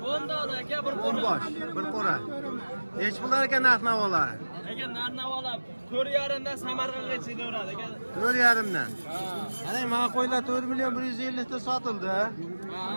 10 dona aka, bir 10 bosh, bir qora. Nech pullar ekan narx-navolar? aka narx-navolab 4,5 dan Samarqandgacha beradi aka. 4,5 dan. Ana mana qo'ylar 4 million 150 ta sotildi.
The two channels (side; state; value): both; inverted; correlation -1.00